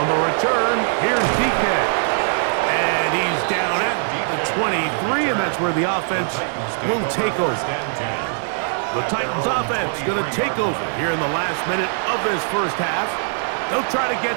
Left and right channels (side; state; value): left; silent; 63 dB below the other